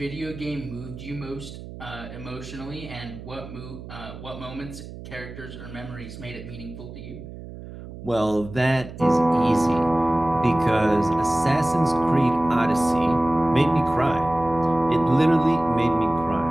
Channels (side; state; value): right; noise; hum, 13 dB below the sound